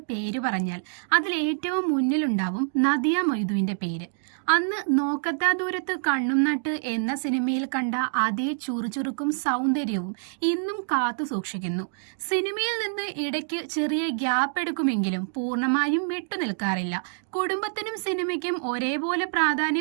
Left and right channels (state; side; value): silent; left; digital silence